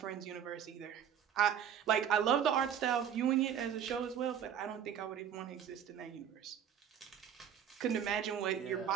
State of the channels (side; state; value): left; quieter; 8.8 dB